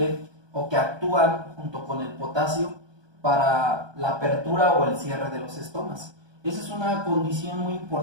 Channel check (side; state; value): left; late; 1.2 ms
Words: o que actúan junto con el potasio para la apertura o el cierre de los estomas. Esa es una condición muy